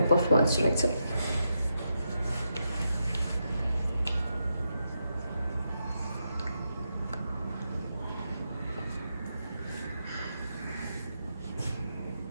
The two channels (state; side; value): inverted; both; correlation -0.84